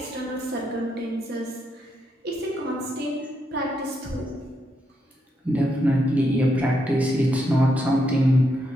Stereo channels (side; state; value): both; normal; correlation 0.80